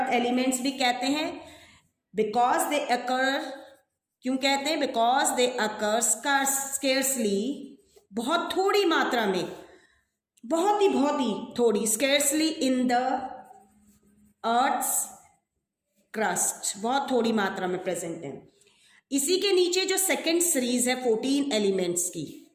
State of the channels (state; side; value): identical; both; correlation 1.00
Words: एलिमेंट्स भी कहते हैं. बिकॉज दे अकर, क्यों कहते हैं? बिकॉज दे अकर स्केर्सली, बहुत थोड़ी मात्रा में, बहुत ही थोड़ी, scarcely in the earth's crust, बहुत थोड़ी मात्रा में प्रेजेंट है. इसी के नीचे जो सेकेंड सीरीज है 14 एलिमेंट्स की,